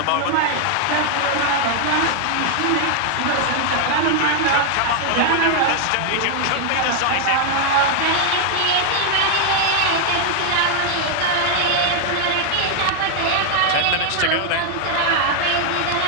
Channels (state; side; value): different; both; correlation 0.00